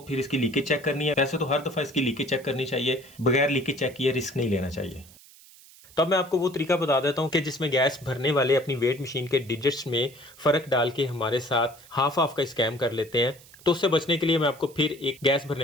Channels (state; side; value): noise; right; hiss, 23 dB below the sound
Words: फिर इसकी लीकेज चेक करनी है। वैसे तो हर दफ़ा इसकी लीकेज चेक करनी चाहिए, बगैर लीकेज चेक किए रिस्क नहीं लेना चाहिए। तो अब मैं आपको वो तरीका बता देता हूँ कि जिसमें गैस भरने वाले अपनी वेट मशीन के डिजिट्स में फ़र्क डाल के हमारे साथ हाफ का स्कैम कर लेते हैं। तो उससे बचने के लिए मैं आपको फिर एक गैस